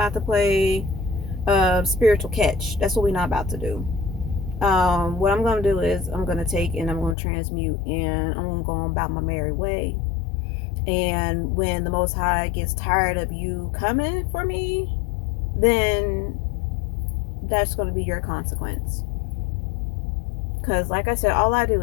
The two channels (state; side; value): drops out; right; at 7.2 s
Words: to play spiritual catch. That's what we're not about to do. What I'm going to do is I'm going to take and I'm going to transmute, and I'm going to go on about my merry way. And when the Most High gets tired of you coming for me, then that's going to be your consequence. Because, like I said, all I do